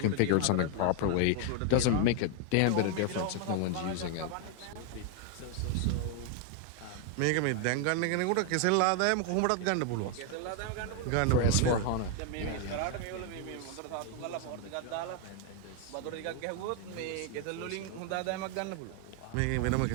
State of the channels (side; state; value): both; different; correlation 0.01